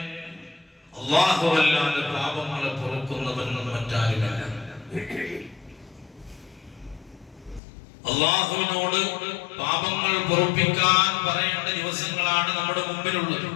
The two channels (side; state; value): right; drops out; at 7.6 s